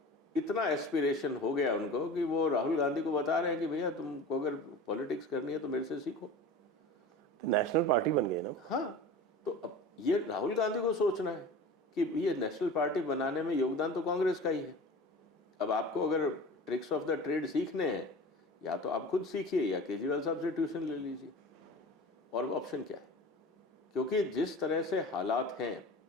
इतना एस्पिरेशन हो गया उनको कि वो राहुल गांधी को बता रहे हैं कि भैया तुमको अगर पॉलिटिक्स करनी है तो मेरे से सीखो। तो नेशनल पार्टी बन गई ना। हाँ, तो अब ये राहुल गांधी को सोचना है कि ये नेशनल पार्टी बनाने में योगदान तो कांग्रेस का ही है। अब आपको अगर ट्रिक्स ऑफ द ट्रेड सीखने हैं, या तो आप खुद सीखिए या केजरीवाल साहब से ट्यूशन ले लीजिए, और ऑप्शन क्या है? क्योंकि जिस तरह से हालात हैं,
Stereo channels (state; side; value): normal; both; correlation 0.36